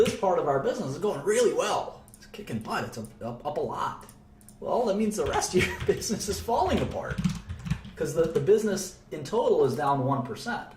part of our business, it's going really well. It's kicking butt. It's up a lot. Well, that means the rest of your business is falling apart because the business in total is down 1%.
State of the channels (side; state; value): both; identical; correlation 1.00